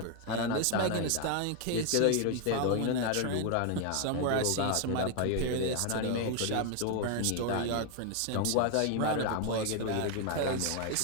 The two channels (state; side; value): different; both; correlation 0.01